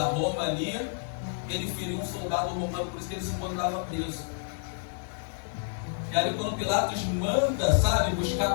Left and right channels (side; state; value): right; silent; digital silence